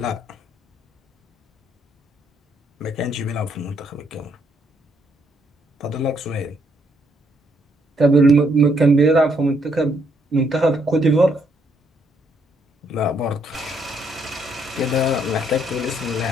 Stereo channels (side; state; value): both; normal; correlation 0.72